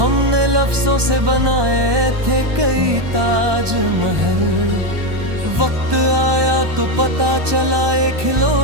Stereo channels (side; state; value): left; late; 1.2 ms